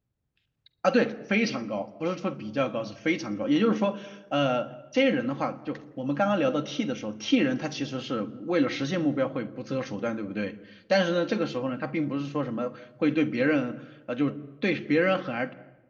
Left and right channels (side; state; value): both; identical; correlation 1.00